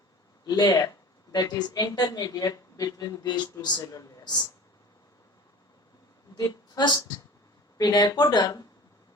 layer that is intermediate between these two cellular layers. The first pinacoderm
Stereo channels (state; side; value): normal; both; correlation 0.41